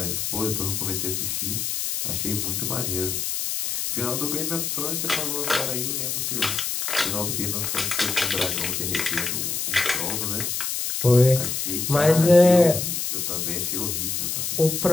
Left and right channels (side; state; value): left; noise; hiss, 2 dB below the sound